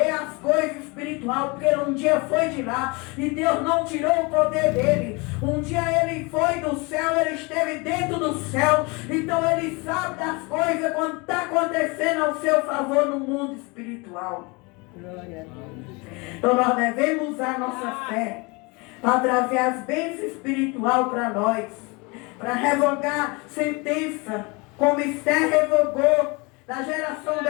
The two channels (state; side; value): quieter; right; 27.7 dB